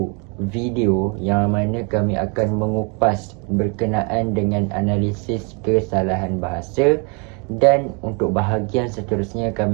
video yang mana kami akan mengupas berkenaan dengan analisis kesalahan bahasa, dan untuk bahagian seterusnya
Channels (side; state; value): left; quieter; 33.9 dB